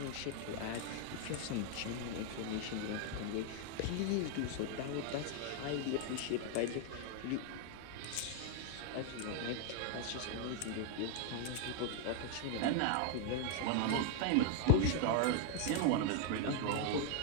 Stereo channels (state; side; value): different; both; correlation 0.00